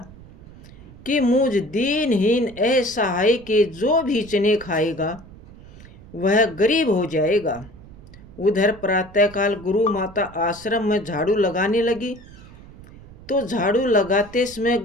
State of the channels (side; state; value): right; noise; rumble, 20 dB below the sound